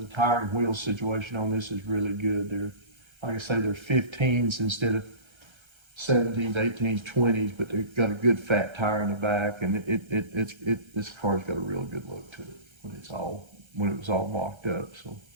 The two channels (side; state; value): left; late; 1.3 ms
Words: tire and wheel situation on this is really good. They're, like I say, they're 15s instead of 17s, 18s, 20s, but they've got a good fat tire in the back, and this car's got a real good look to it when it was all mocked up. So.